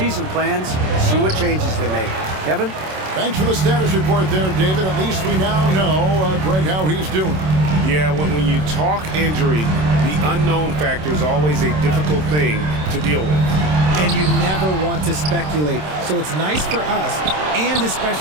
plans and see what changes they make. Kevin? Thanks for the status report there, David. At least we now know, Greg, how he's doing. Yeah, when you talk injury, the unknown factor is always a difficult thing to deal with. And you never want to speculate. So it's nice for us, and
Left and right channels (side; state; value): left; late; 27 ms